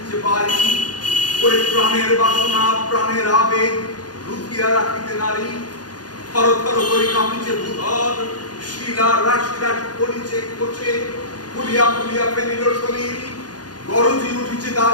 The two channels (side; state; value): right; late; 0.69 ms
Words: বাড়ি, ওরে প্রাণের বাসনা প্রাণের আবেগ লুকিয়া রাখিতে নারী, থর থর করে কাঁপিছে ভূধর, শিলা রাশি রাশি পড়িছে কোচে, ফুলিয়া ফেনিল শরীর, গরজি উঠিছে